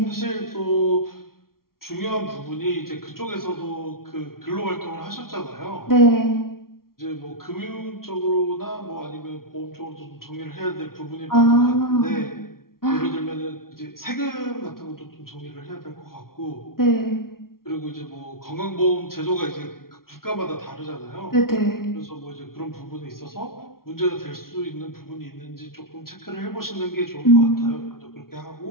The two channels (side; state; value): right; late; 0.93 ms